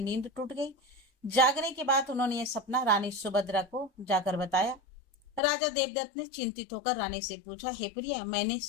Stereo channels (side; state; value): right; drops out; at 5.4 s